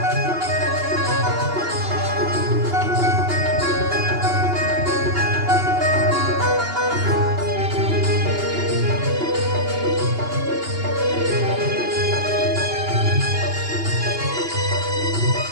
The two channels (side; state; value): left; late; 2.8 ms